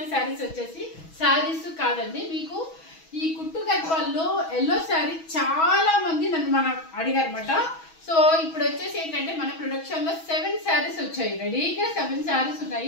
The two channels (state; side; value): late; right; 6.2 ms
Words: శారీస్ వచ్చేసి శారీస్ కాదండి, మీకు ఈ కుట్టు గద్వాల్లో ఎల్లో శారీ చాలా మంది నన్ను అడిగారు అనమాట. సో ఇప్పుడు వచ్చేసి ఏంటంటే మన ప్రొడక్షన్ లో 7 శారీస్ వచ్చాయి, రెడీగా 7 శారీస్